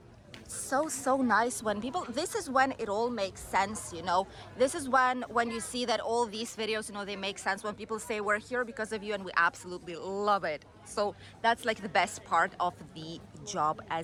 So nice when people, this is when it all makes sense, you know. This is when you see that all these videos, you know, they make sense when people say we're here because of you, and we absolutely love it. So that's like the best part of the job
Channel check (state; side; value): identical; both; correlation 1.00